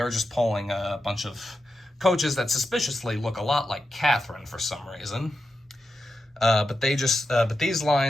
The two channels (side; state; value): both; normal; correlation 0.89